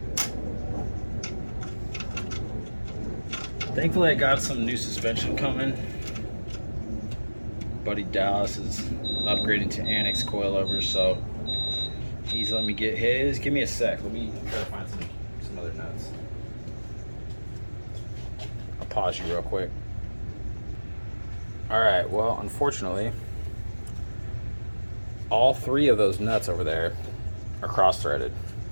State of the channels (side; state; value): both; inverted; correlation -1.00